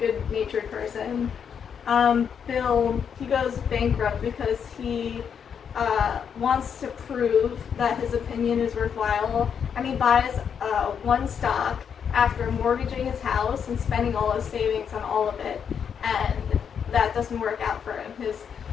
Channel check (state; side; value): quieter; right; 7.4 dB